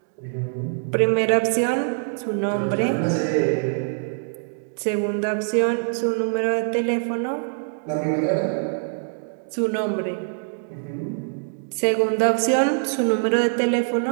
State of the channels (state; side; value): silent; left; digital silence